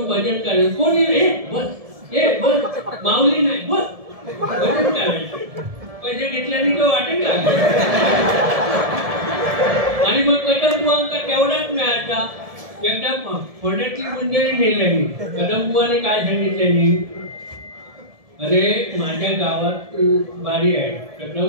भजन करायचं. कोणी रे बस हे बस माऊली नाही बस भजन करायचं. पैसे घेतल्याने तो वाटेल का? आणि मग कदमबुवांका तेवढाच मिळायचा. एकदा फोड्यातली मंडळी नेल्यानी कदमबुवाने काय सांगितल्यानी, अरे माझ्या गावात बारी आहे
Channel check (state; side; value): late; left; 1.7 ms